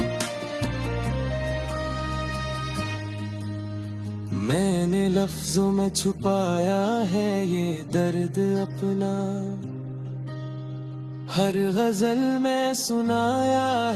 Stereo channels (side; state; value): both; identical; correlation 1.00